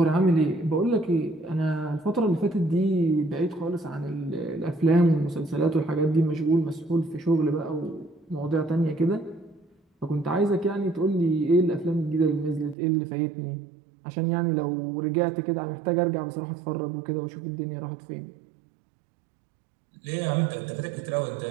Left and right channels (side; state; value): left; drops out; at 12.8 s